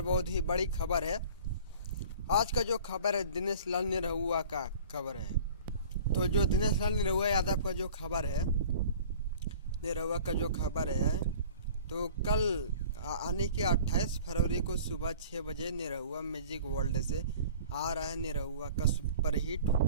बहुत ही बड़ी खबर है। आज का जो खबर है दिनेश लाल निरहुआ का खबर है। तो जो दिनेश लाल निरहुआ यादव का जो खबर है, निरहुआ का जो खबर है, तो कल आने के 28 फरवरी को सुबह 6 बजे निरहुआ म्यूजिक वर्ल्ड से आ रहा है निरहुआ का सुपरहिट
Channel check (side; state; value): both; inverted; correlation -0.45